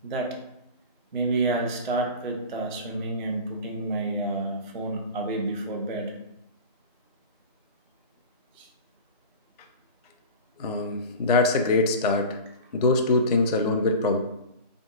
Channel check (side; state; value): both; inverted; correlation -0.32